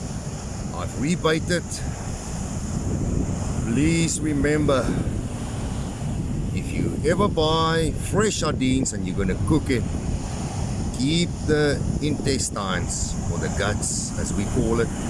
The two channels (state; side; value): identical; both; correlation 1.00